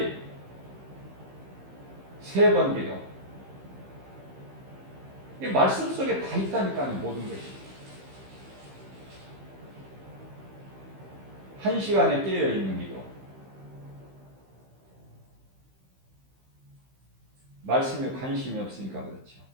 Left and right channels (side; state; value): left; late; 15 ms